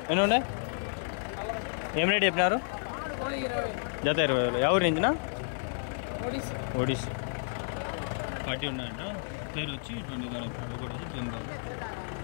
ఎన్ని ఉన్నాయి? ఏం రేట్ చెప్పినారు? జత 20,000. ఎవరి నుంచినా? ఒడిస్సీ. 40 ఉన్నాయంట. పేరు వచ్చి 20,000 చెప్పినాడు. ఒకటి వచ్చి 10,000.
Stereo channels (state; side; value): silent; right; 57 dB below the other